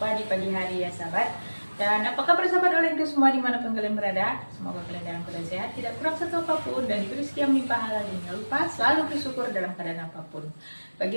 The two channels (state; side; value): inverted; both; correlation -1.00